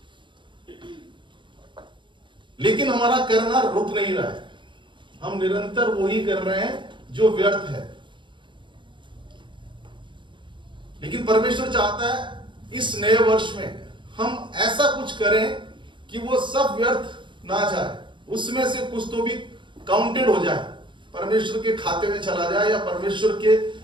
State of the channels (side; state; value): left; late; 0.23 ms